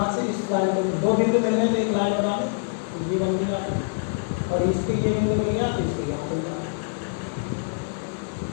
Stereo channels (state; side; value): silent; right; digital silence